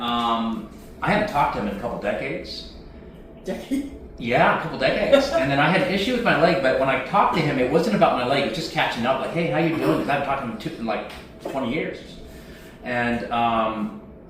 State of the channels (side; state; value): both; identical; correlation 1.00